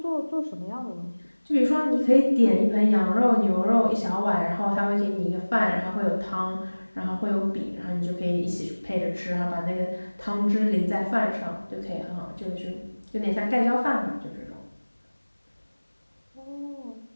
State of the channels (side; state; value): both; inverted; correlation -1.00